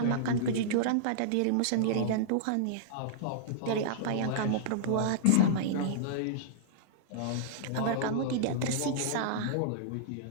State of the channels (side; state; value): both; different; correlation -0.02